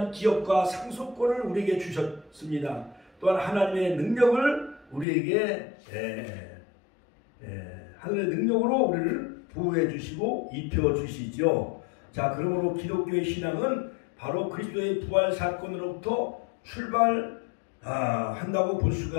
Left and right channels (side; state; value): right; drops out; at 5.1 s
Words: 기업과 상속권을 우리에게 주셨습니다. 또한 하나님의 능력을 우리에게 하늘의 능력으로 우리를 보호해 주시고 입혀 주시죠. 자, 그러므로 기독교의 신앙은 바로 그리스도의 부활 사건으로부터 출발한다고 볼